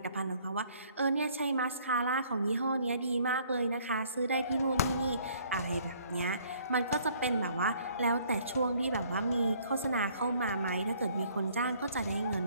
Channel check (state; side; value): inverted; both; correlation -0.60